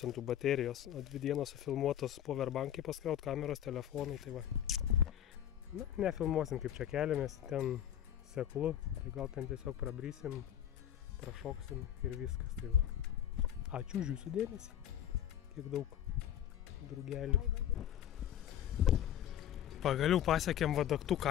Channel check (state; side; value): quieter; right; 10.6 dB